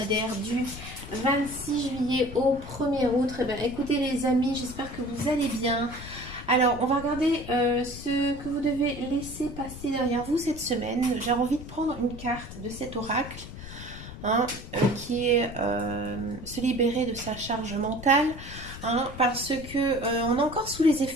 du 26 juillet au 1er août. Eh bien, écoutez les amis, j'espère que vous allez bien. Alors, on va regarder ce que vous devez laisser passer derrière vous cette semaine. J'ai envie de prendre une carte de cet oracle, qui est se libérer de sa charge mentale. Parce que on est encore sous les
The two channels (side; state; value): left; noise; rumble, 12 dB below the sound